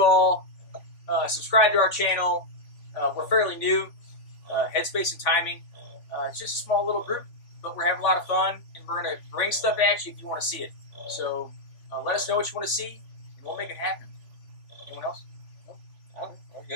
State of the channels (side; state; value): right; late; 3.5 ms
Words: all. Subscribe to our channel. We're fairly new. Headspace and Timing. It's just a small little group, but we're having a lot of fun, and we're going to bring stuff at you if you want to see it. So let us know what you want to see, and we'll make it happen. Anyone else? Oh, we're